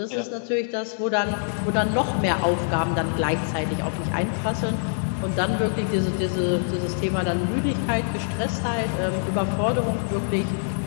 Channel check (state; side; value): silent; right; digital silence